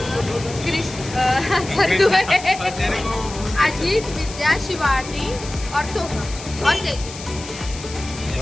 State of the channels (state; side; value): noise; left; hiss, 13 dB below the sound